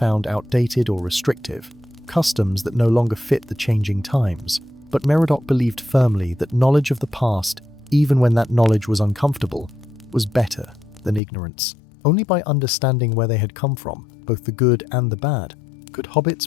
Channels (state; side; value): drops out; right; at 11.2 s